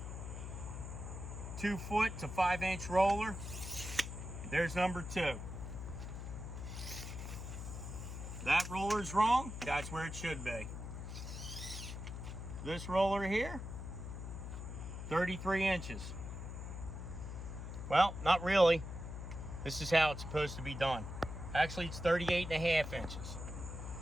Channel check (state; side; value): noise; left; hum, 7 dB below the sound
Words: 2 foot to 5 inch roller. There's number 2. That roller's wrong, that's where it should be. This roller here, 33 inches. Well, not really. This is how it's supposed to be done. Actually, it's 38.5 inches